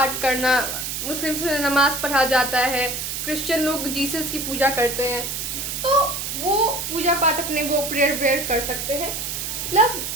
करना, मुस्लिम्स में नमाज पढ़ा जाता है, क्रिश्चियन लोग जीसस की पूजा करते हैं, तो वो पूजा पाठ अपने वो प्रेयर वेयर कर सकते हैं। प्लस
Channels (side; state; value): right; noise; hiss, 4 dB below the sound